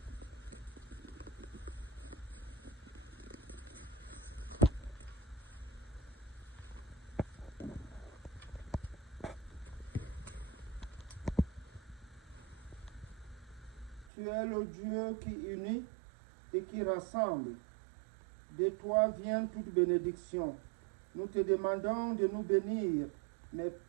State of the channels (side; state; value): left; drops out; at 14.1 s